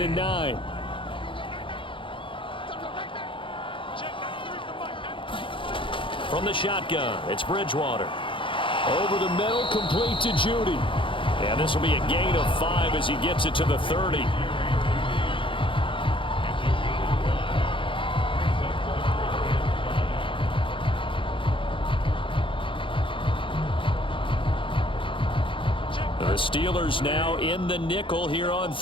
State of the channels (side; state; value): right; late; 0.25 ms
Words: and 9. From the shotgun, it's Bridgewater. Over the middle, complete to Judy. And this will be a gain of 5 as he gets it to the 30. The Steelers now in the nickel here on